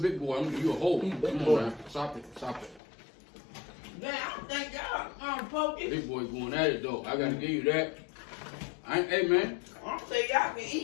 boy. You a whole one. Big Come boy. on, man. Stop it. Stop it. Man, I don't think y'all Pokey. Big boy going at it though. I gotta give you that. Hey man. I don't think y'all can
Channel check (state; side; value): drops out; right; at 2.8 s